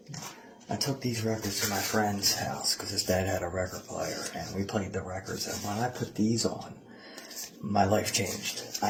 I took these records to my friend's house because his dad had a record player, and we played the records. And when I put these on, my life changed.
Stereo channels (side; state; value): both; identical; correlation 1.00